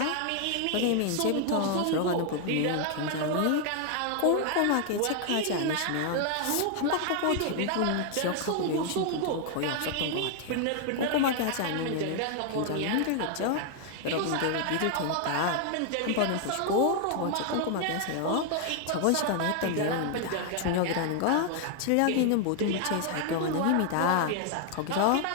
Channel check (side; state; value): both; different; correlation 0.00